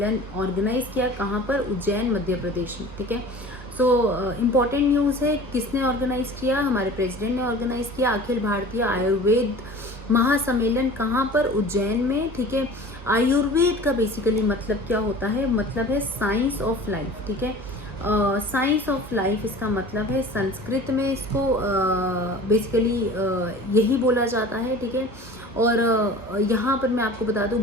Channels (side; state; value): both; normal; correlation 0.41